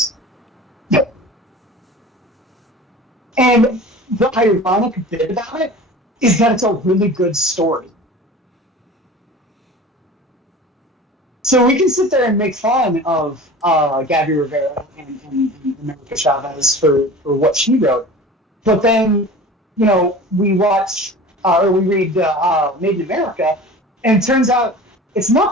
And the ironic bit about it is that it's a really good story. So we can sit there and make fun of Gabby Rivera and America Chavez for what she wrote, but then, you know, we watch or we read Made in America, and it turns out it's not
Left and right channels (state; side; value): normal; both; correlation 0.38